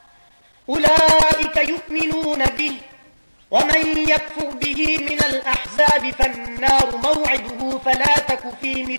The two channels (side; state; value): both; inverted; correlation -1.00